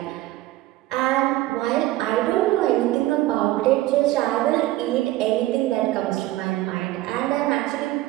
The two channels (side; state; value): left; quieter; 16.7 dB